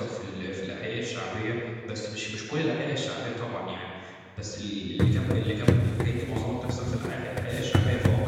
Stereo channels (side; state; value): both; identical; correlation 1.00